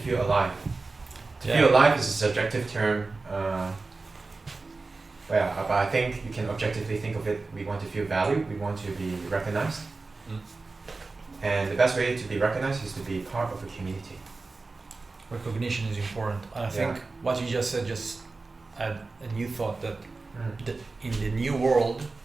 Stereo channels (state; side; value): quieter; left; 3.7 dB